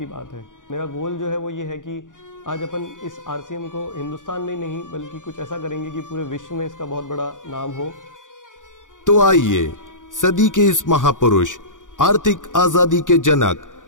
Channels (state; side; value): late; right; 0.87 ms